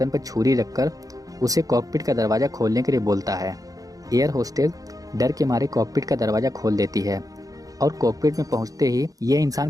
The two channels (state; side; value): late; left; 0.17 ms